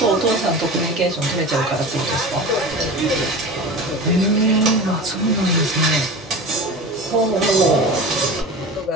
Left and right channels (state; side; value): normal; both; correlation 0.32